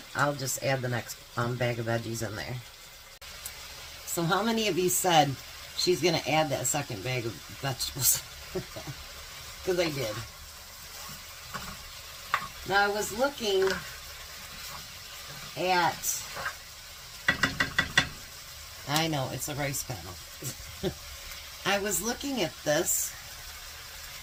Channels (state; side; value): identical; both; correlation 1.00